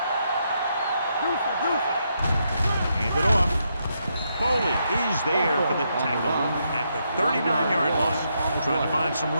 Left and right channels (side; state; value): both; inverted; correlation -0.79